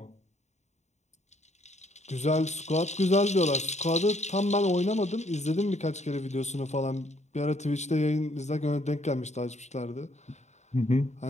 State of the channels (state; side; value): late; right; 0.33 ms